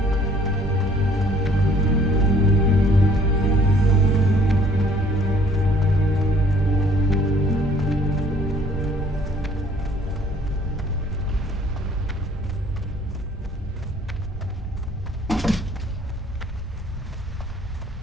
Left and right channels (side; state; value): both; normal; correlation 0.57